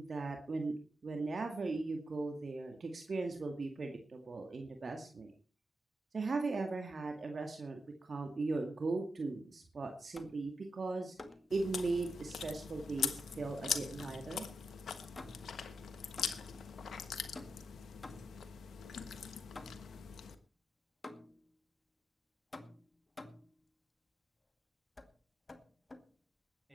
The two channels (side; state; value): both; normal; correlation 0.87